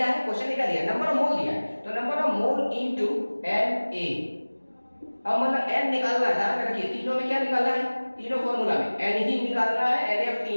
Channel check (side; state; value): both; inverted; correlation -1.00